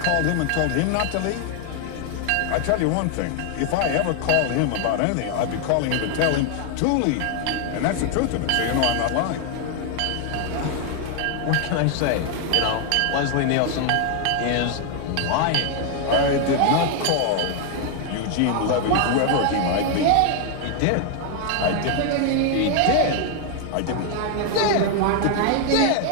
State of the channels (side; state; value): both; different; correlation 0.00